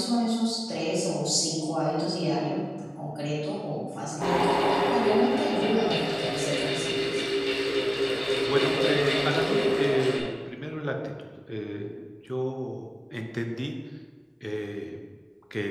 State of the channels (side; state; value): both; identical; correlation 1.00